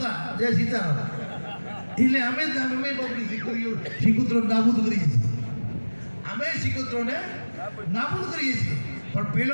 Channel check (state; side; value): inverted; both; correlation -1.00